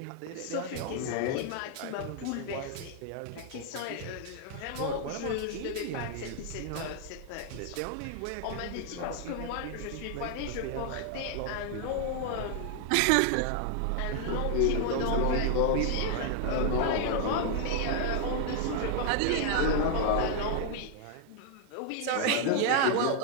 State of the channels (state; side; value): different; both; correlation 0.00